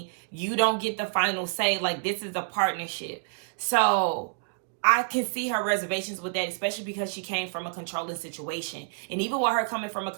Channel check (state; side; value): silent; left; digital silence